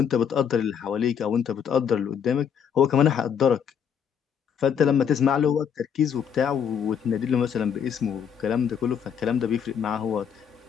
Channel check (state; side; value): quieter; right; 7.8 dB